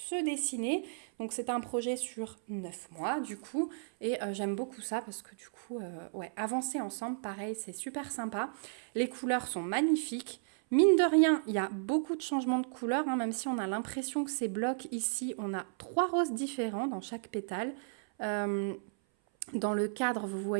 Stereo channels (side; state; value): left; silent; 55 dB below the other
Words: dessiner. Donc c'est un projet sur 9 mois du coup. Et j'aime beaucoup ça parce que du coup, ouais, avancer ensemble, pareil, c'est super sympa. Les couleurs sont magnifiques. Mine de rien, il y a beaucoup de changements de couleurs, hein, même si on a l'impression que ces blocs ici, on a 3 roses différents dans chaque pétale. Dans le cadre, vous